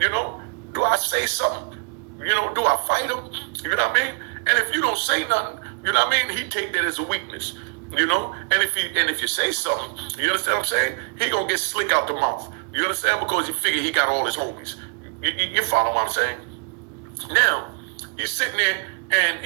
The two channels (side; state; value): left; quieter; 35.8 dB